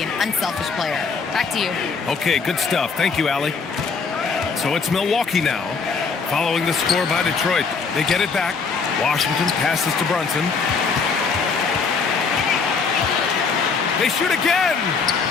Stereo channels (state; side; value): quieter; right; 5.1 dB